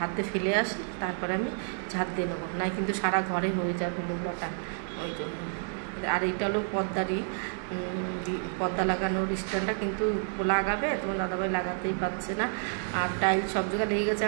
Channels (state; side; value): silent; left; 58 dB below the other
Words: ফেলে আসি, তারপরে আমি ঝাঁট দিয়ে নেবো, নাই কিন্তু সারা ঘরে হয়ে যাবে নোংরাটা, ওই জন্য। আর এইটা হলো পর্দা লাগানোর স্ট্যান্ডটা, কিন্তু লাগাবে, তোমার দাদাভাই লাগাতেই পারছে না। আর টাইলস সব জায়গায় লেগে গেছে।